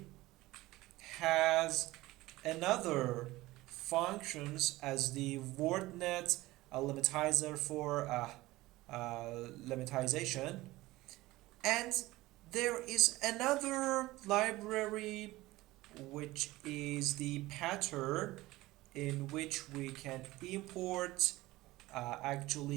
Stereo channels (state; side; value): quieter; left; 18.6 dB